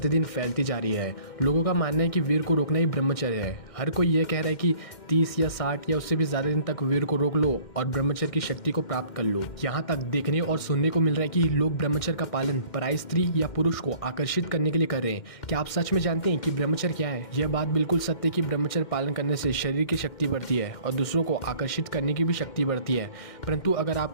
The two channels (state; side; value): late; right; 2.1 ms